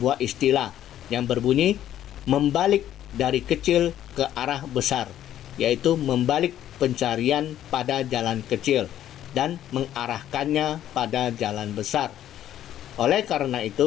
istilah yang berbunyi membalik dari kecil ke arah besar, yaitu membalik pencarian pada jalan kecil dan mengarahkannya pada jalan besar. Oleh karena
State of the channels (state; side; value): quieter; right; 11.7 dB